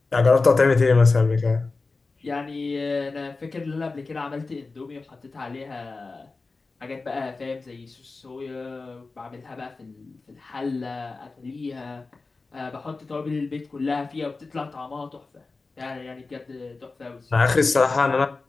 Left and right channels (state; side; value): quieter; right; 3.8 dB